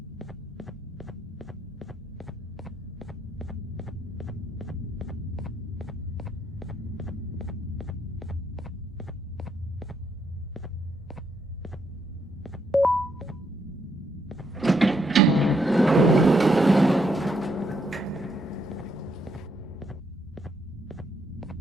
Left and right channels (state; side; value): normal; both; correlation 0.75